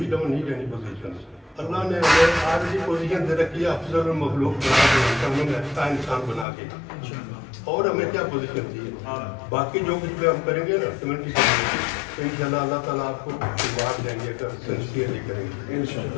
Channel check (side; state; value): right; drops out; at 6.5 s